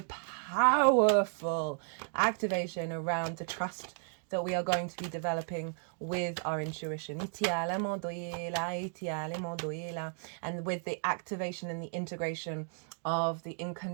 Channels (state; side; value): silent; left; 55 dB below the other